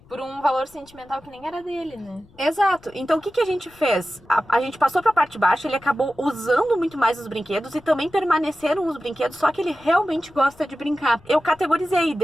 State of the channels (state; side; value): noise; left; rumble, 27 dB below the sound